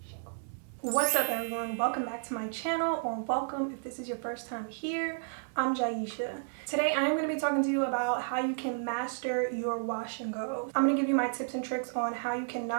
What's up everyone? Welcome back to my channel, or welcome if this is your first time here. I'm Jaisha. Today I am going to be talking to you about how you can master your wash and go. I'm going to give you my tips and tricks on how you can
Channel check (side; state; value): left; silent; digital silence